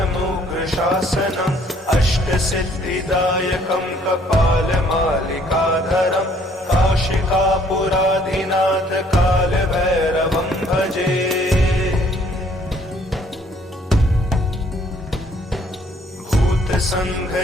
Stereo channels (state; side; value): normal; both; correlation 0.62